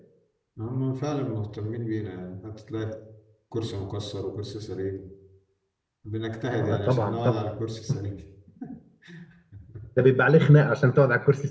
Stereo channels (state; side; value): identical; both; correlation 1.00